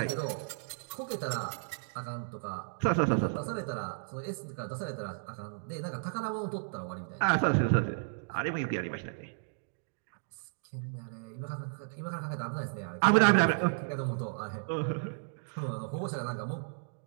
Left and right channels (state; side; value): silent; left; digital silence